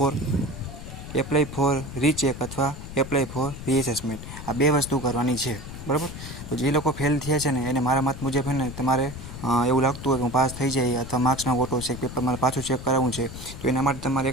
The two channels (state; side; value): noise; left; rumble, 11 dB below the sound